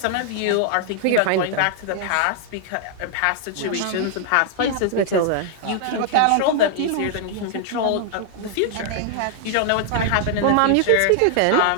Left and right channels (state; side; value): different; both; correlation 0.00